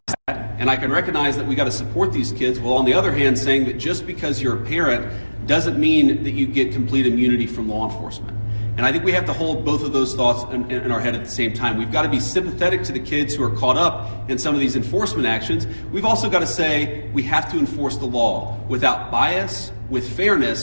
that, and I can recognize that we got to support these kids, while on the other hand saying that just because you're a parent doesn't mean that you get complete immunity from law enforcement. And I think we have to hold both of those thoughts in our head at the same time. We've got to be sympathetic to the kids who are caught up in some of these enforcement actions. We've also got to say we have to enforce the law without bias, with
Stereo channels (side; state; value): both; inverted; correlation -1.00